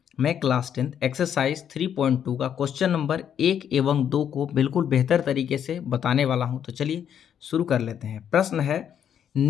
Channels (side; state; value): right; quieter; 8.9 dB